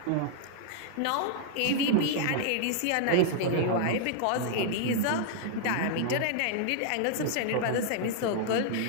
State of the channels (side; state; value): both; different; correlation -0.01